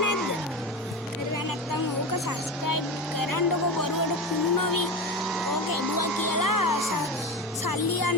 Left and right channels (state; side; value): normal; both; correlation 0.23